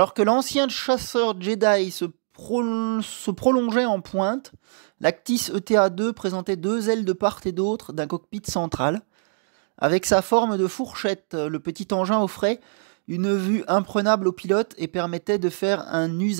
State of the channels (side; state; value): left; silent; digital silence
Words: que l'ancien chasseur Jedi se prolongeait en pointe, l'Actis ETA-2 présentait deux ailes de part et d'autre d'un cockpit central. Avec sa forme de fourchette, le petit engin offrait une vue imprenable au pilote et permettait de faire un